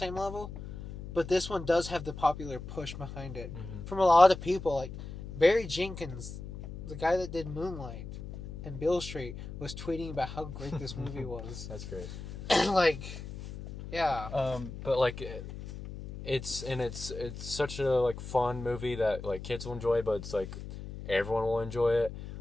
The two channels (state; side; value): noise; left; hum, 10 dB below the sound